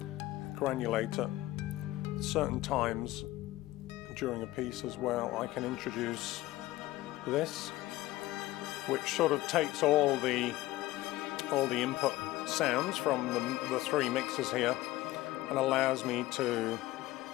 Granulator. Certain times during a piece as well, I can introduce this, which sort of takes all the input sounds from the three mixers here and allows me to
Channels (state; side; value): quieter; right; 17.2 dB